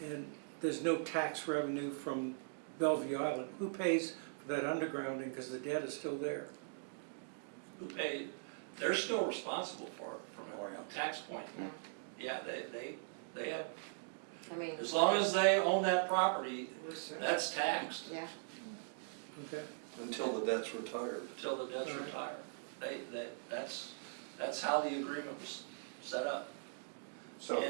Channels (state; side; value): silent; left; digital silence